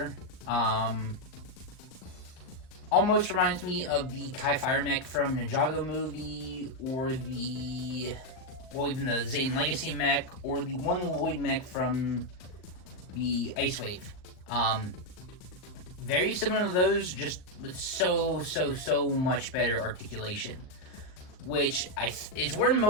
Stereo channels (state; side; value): late; right; 38 ms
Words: Almost reminds me of the Kai Fire mech from Ninjago movie, or even the Zane Legacy mech, or the One Lloyd mech from the Ice Wave. Very similar to those, just with so much better articulation, which is where